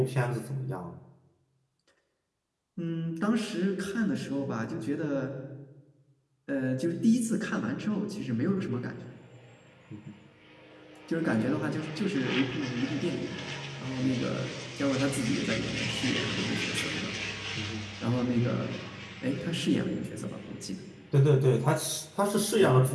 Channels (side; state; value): both; identical; correlation 1.00